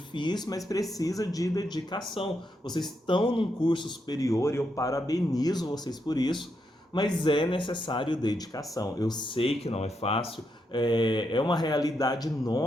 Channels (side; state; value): both; normal; correlation 0.81